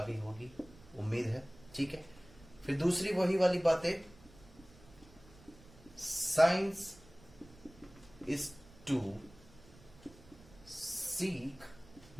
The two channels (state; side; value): noise; right; rumble, 23 dB below the sound